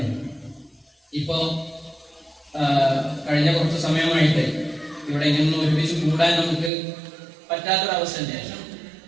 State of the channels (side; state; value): left; drops out; at 6.7 s